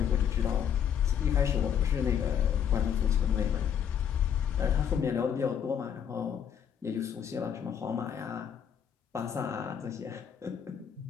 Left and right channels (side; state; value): right; quieter; 8.4 dB